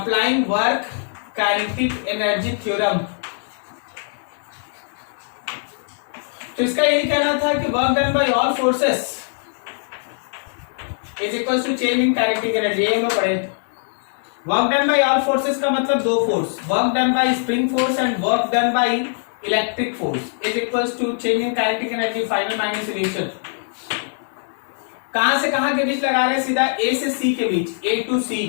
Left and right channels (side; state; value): right; silent; digital silence